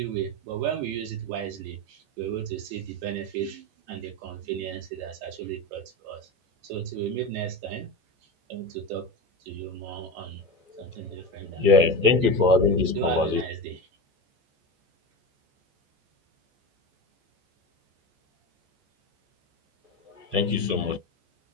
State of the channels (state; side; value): late; left; 14 ms